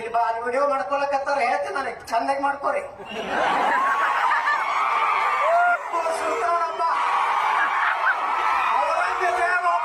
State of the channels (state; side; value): identical; both; correlation 1.00